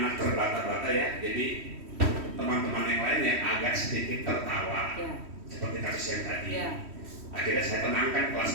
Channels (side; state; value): left; late; 3.1 ms